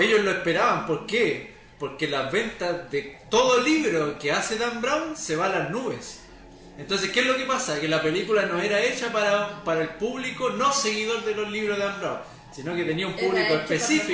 lo esperaban. ¿Por qué? Porque las ventas de todo libro que hace Dan Brown se van a las nubes. Entonces, ¿qué es lo que pasa? Que la película no era hecha para el público no seguidor de los libros de Dan Brown, sino que tenía un público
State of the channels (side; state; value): both; identical; correlation 1.00